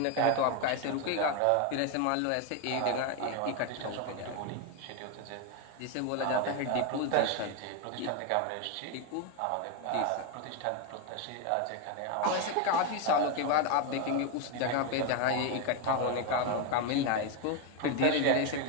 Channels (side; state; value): both; different; correlation 0.01